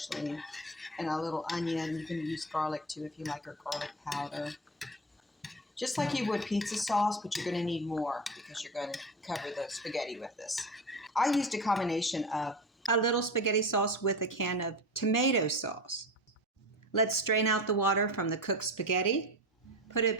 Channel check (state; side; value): normal; both; correlation 0.28